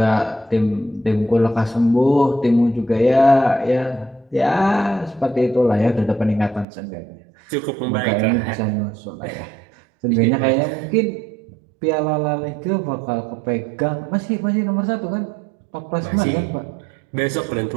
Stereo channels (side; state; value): left; drops out; at 6.7 s